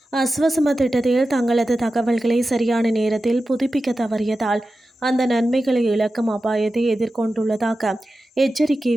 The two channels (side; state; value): both; normal; correlation 0.93